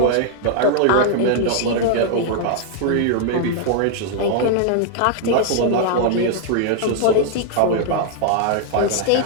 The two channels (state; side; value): different; both; correlation -0.01